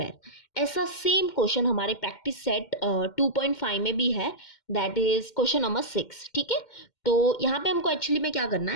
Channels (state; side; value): late; right; 2.1 ms